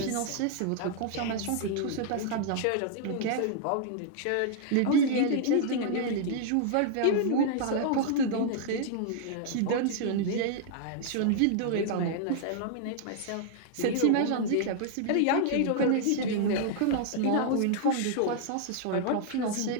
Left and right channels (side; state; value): both; different; correlation -0.01